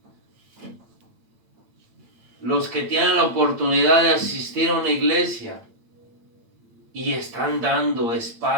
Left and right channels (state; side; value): late; left; 8.9 ms